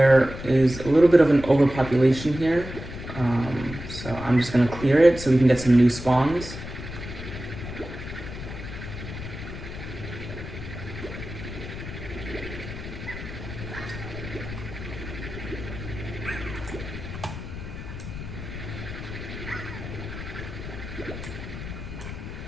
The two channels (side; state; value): left; noise; rumble, 9 dB below the sound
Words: is a little bit of an overpopulation here, so I'm just going to clear it so we can get some new spawns.